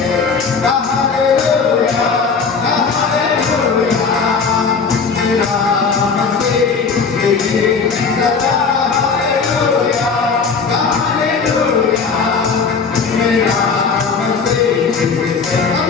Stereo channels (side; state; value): right; quieter; 5.2 dB